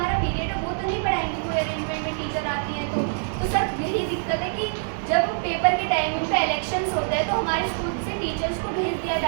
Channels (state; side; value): silent; left; digital silence